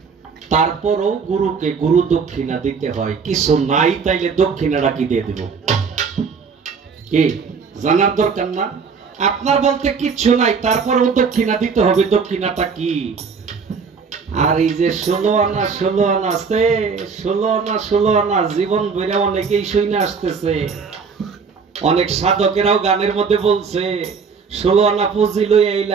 তারপরও গুরুকে গুরু দক্ষিণা দিতে হয়। কিছু নাই তাইলে দক্ষিণাটা কি দিয়ে দিব? কি জানার দরকার না? আপনার বলতে কিচ্ছু নাই, তারপরেও দক্ষিণা দিতে হবে। দক্ষিণাটা কি? আর এই যে 16 আনা 16 আনা আছে, 16 আনা 16 আনা জীবন বেড়ে অনেকেই শুনে আসতেছে। অনেক সাধকেরাও গানের মধ্যে বলছে, 16 আনা পুঁজি লই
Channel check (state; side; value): quieter; left; 5.6 dB